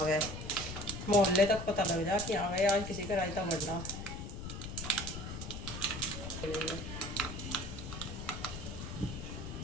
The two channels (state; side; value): noise; left; rumble, 7 dB below the sound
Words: गया। मोहल्ले तक पता लग जाए कि आ गए आज किसी का रायता बढ़ना।